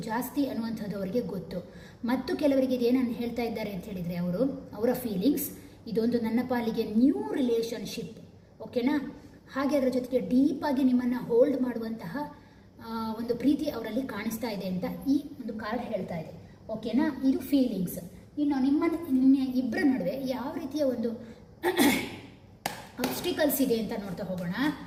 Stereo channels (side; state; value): both; identical; correlation 1.00